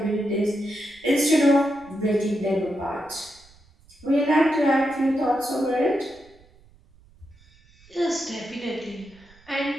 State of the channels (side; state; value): right; noise; rumble, 28 dB below the sound